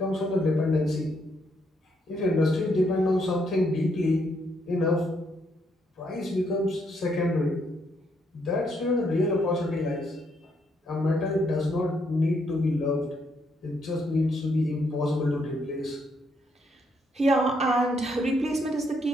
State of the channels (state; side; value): normal; both; correlation 0.74